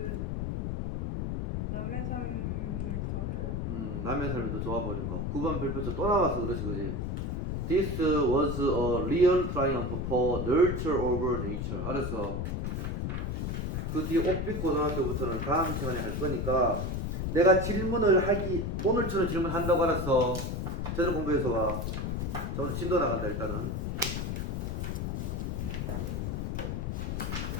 남의 삶을 더 남의 삶이 더 좋아버린 거. 9번 별표 쳐. 또 나왔어 그렇지 그지? This was a real triumph for nurture over nature. 알았어. 그 뒤에 옥빛 고등학교부터는 다음 시간에 할 거니까 내가 질문을 하기 오늘처럼 질문한다고 알았어. 제대로 공부해서 와. 자, 오늘 진도 나간다 일단은.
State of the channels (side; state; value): left; noise; rumble, 1 dB below the sound